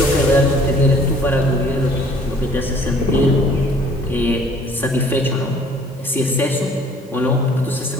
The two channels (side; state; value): both; normal; correlation 0.56